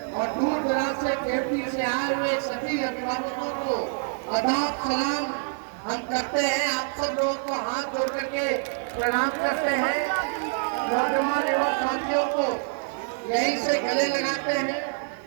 और दूर दराज से केवटी से आए हुए सभी अभिभावकों को आदाब सलाम हम करते हैं। आप सब लोगों को हाथ जोड़ करके प्रणाम करते हैं। नौजवान एवं साथियों को यहीं से गले लगाते हैं।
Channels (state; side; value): silent; left; 59 dB below the other